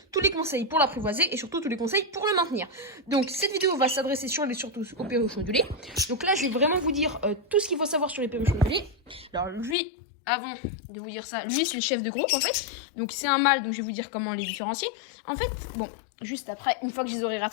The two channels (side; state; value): right; drops out; at 9.8 s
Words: tous les conseils pour l'apprivoiser et surtout tous les conseils pour le maintenir. Donc cette vidéo va s'adresser surtout aux perruches ondulés. Donc là je vais vraiment vous dire tout ce qu'il faut savoir sur les perruches ondulés. Alors lui, avant de vous dire ça, lui c'est le chef de groupe en fait. Donc c'est un mâle, donc je vais vous dire comment les différencier. En fait, bon, juste après, une fois que je les aurai